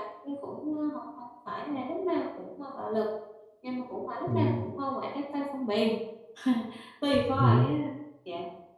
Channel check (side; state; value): both; identical; correlation 1.00